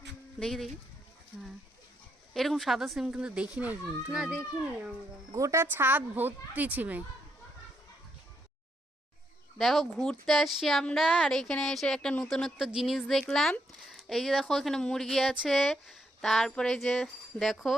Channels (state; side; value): normal; both; correlation 0.77